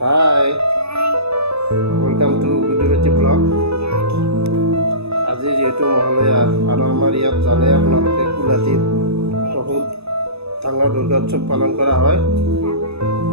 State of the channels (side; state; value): left; late; 0.79 ms